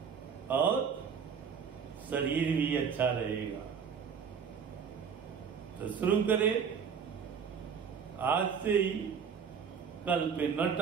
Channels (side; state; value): left; quieter; 6.7 dB